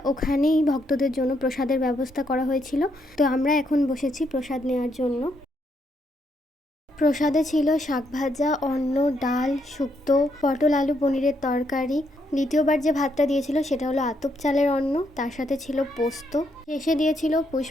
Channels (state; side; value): normal; both; correlation 0.76